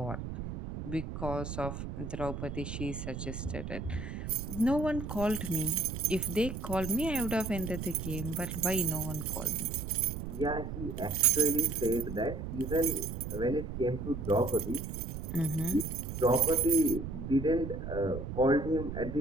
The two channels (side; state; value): right; noise; rumble, 6 dB below the sound